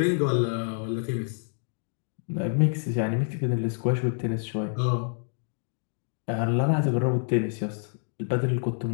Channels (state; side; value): silent; right; digital silence